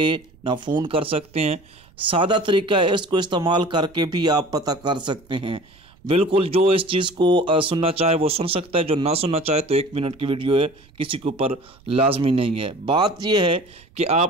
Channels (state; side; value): noise; right; rumble, 28 dB below the sound